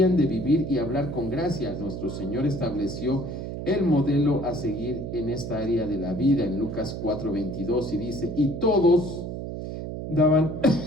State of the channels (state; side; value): noise; right; hum, 6 dB below the sound